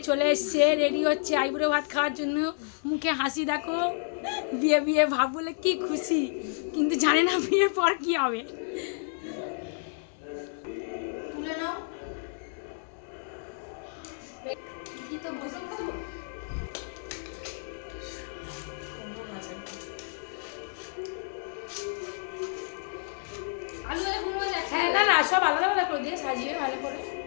চলে এসছে, রেডি হচ্ছে আইবুড়ো ভাত খাওয়ার জন্য। মুখে হাসি দেখো, বিয়ে বিয়ে ভাব বলে কি খুশি, কিন্তু জানে না বিয়ের পর কি হবে। তুলে নাও। হ্যাঁ, না না, সব আলাদা আলাদা করে দিয়ে সাজিয়ে ভালো করে,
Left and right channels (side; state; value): right; silent; 58 dB below the other